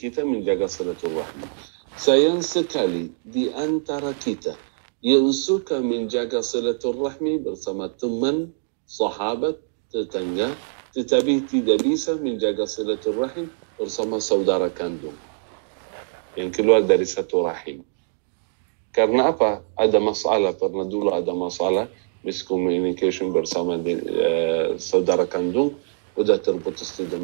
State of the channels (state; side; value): silent; left; digital silence